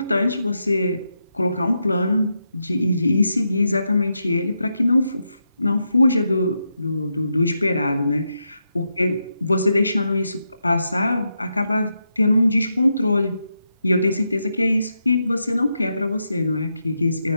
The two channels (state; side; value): inverted; both; correlation -0.84